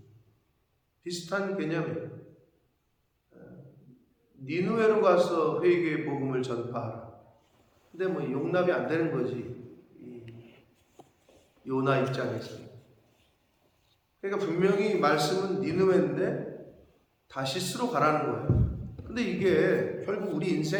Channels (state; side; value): identical; both; correlation 1.00